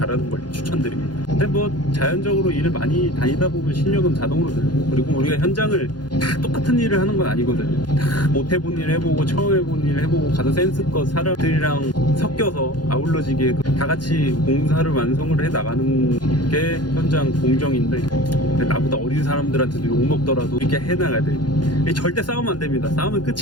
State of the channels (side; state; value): right; late; 0.70 ms